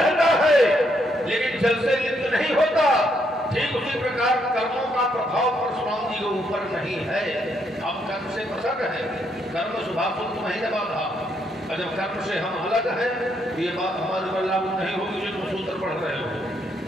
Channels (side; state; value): both; normal; correlation 0.74